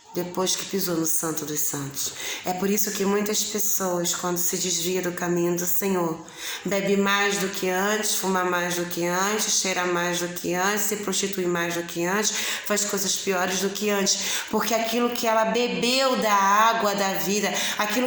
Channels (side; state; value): both; identical; correlation 1.00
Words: depois que pisou no Santo dos Santos. É por isso que muitas pessoas, quando se desviam do caminho do Senhor, bebe mais do que antes, fuma mais do que antes, cheira mais do que antes, se prostitui mais do que antes, faz coisas piores do que antes, porque aquilo que ela bebeu da água da vida,